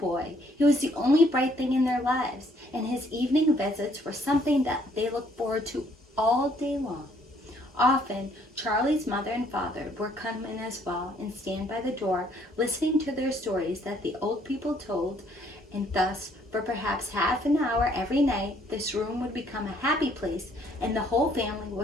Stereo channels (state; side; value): normal; both; correlation 0.65